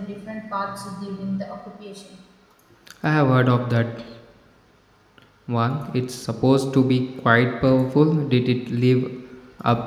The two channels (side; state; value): both; identical; correlation 1.00